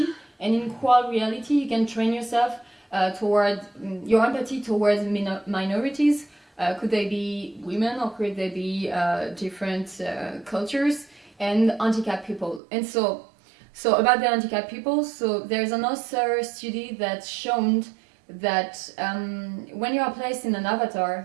and in Equal Reality you can train yourself toward your empathy towards minorities. Could they be women, or could they be different cultures, and handicapped people? And so about the handicapped people, so there's another study that's shown that when you are placed in an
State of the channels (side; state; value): left; drops out; at 12.6 s